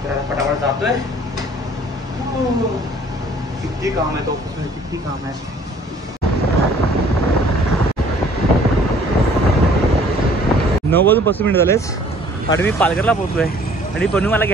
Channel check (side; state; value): both; normal; correlation 0.55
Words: तर पटापट जातोय। किती काम आहे तो ऑफिसमध्ये, किती काम आहे। 9:35 झालेच आणि मी पालघरला पोहोचलोय आणि बनू मला